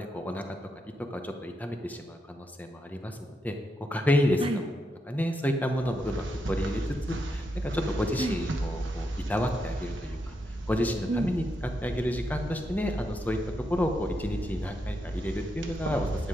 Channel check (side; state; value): both; normal; correlation 0.82